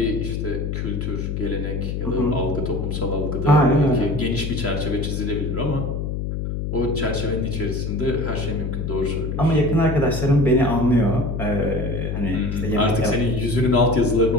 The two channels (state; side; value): noise; left; hum, 3 dB below the sound